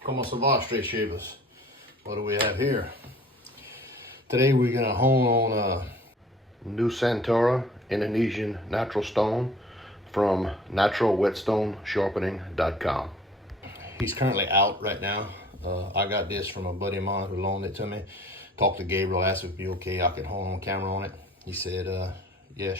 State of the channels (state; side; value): normal; both; correlation 0.50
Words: como se va, straight shavers? What do we have here? Today we're gonna hone on a Nusantara Indonesian natural stone from naturalwhetstonesharpening.com. He's currently out right now. I got this from a buddy of mine who loaned it to me. Talked to Gabriel, asked if it'd be okay, I could hone on camera on it. He said, yeah,